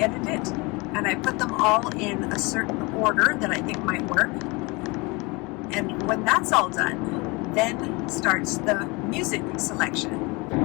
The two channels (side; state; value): right; quieter; 26.3 dB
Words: it, and I put them all in a certain order that I think might work. And when that's all done, then starts the music selection.